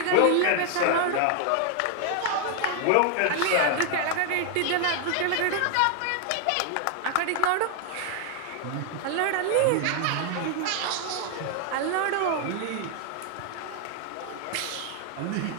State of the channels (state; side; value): different; both; correlation 0.00